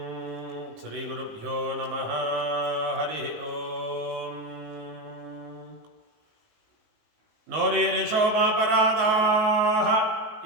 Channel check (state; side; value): late; left; 19 ms